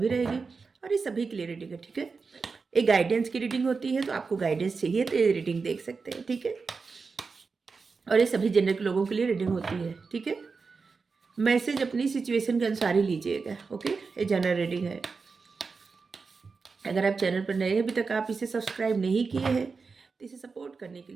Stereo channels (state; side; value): quieter; left; 4.7 dB